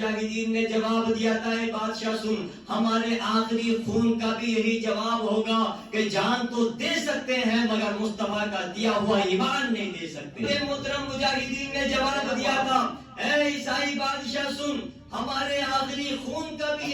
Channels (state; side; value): identical; both; correlation 1.00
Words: نے جواب دیا تھا، اے بادشاہ سن، ہمارے آخری خون کا بھی یہی جواب ہوگا کہ جان تو دے سکتے ہیں مگر مصطفیٰ کا دیا ہوا ایمان نہیں دے سکتے۔ محترم، مجاہدین نے جواب دیا تھا، اے عیسائی بادشاہ سن، ہمارے آخری خون کا بھی